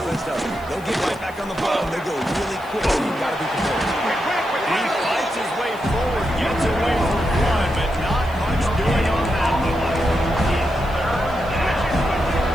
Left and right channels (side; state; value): left; noise; hiss, 24 dB below the sound